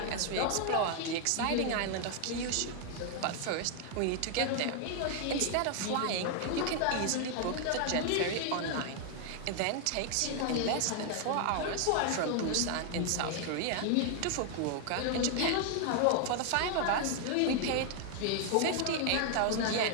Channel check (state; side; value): different; both; correlation 0.00